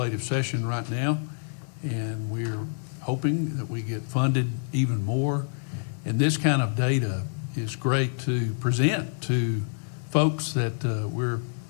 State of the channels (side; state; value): right; silent; digital silence